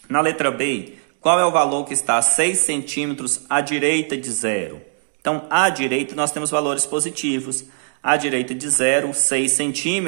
Na letra B, qual é o valor que está a 6 centímetros à direita de zero? Então, à direita nós temos valores positivos. À direita de zero, 6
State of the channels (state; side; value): silent; left; 65 dB below the other